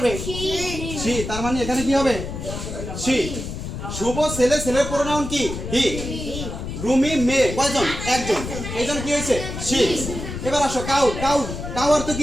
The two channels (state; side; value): noise; left; rumble, 7 dB below the sound